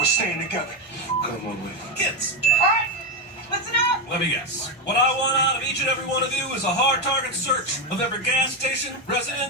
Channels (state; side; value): normal; both; correlation 0.10